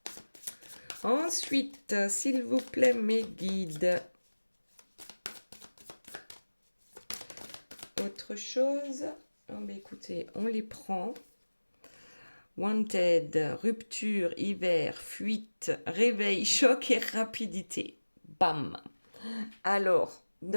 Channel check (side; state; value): both; inverted; correlation -1.00